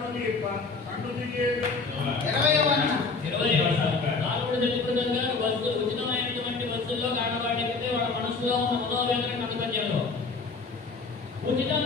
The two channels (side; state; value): right; quieter; 4.2 dB